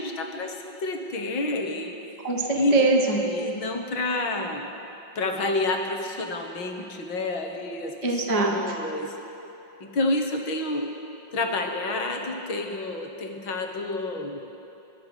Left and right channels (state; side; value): late; right; 5.6 ms